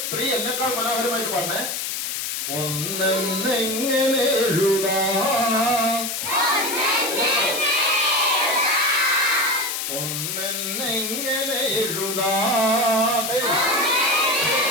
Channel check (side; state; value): left; noise; hiss, 3 dB below the sound